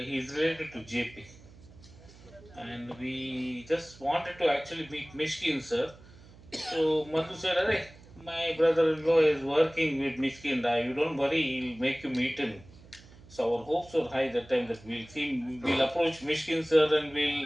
he is related to JP and we just wanted to actually meet Mishkin sir. So Madhu said, "Hey, my brother-in-law is working with Mishkin. You don't worry, he'll make you meet him." So our hopes were high that time that we'll approach Mishkin sir and we'll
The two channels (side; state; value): right; noise; hum, 22 dB below the sound